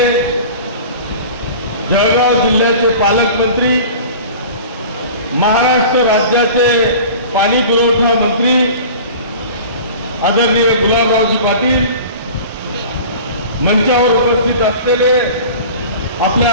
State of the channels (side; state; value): both; inverted; correlation -0.39